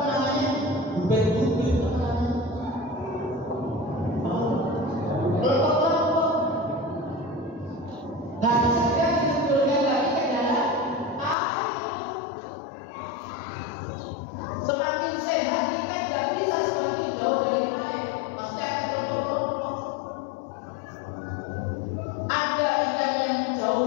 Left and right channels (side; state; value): right; drops out; at 11.4 s